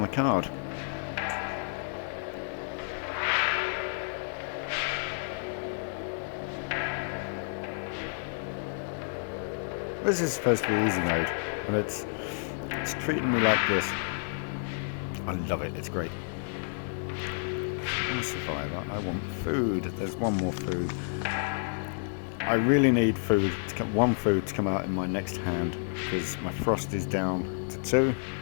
card. This is supposed to be easy mode, and it's treating me like this. I love it. It's great. I'm a survivor. I want food. There's 1 more food. I really need food. 1 food to come out in my next hand, because my frost is down to 2.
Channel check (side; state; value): right; silent; 58 dB below the other